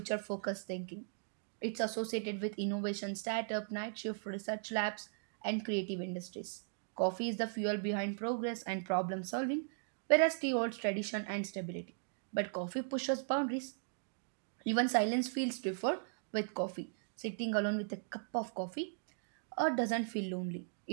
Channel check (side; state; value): left; silent; digital silence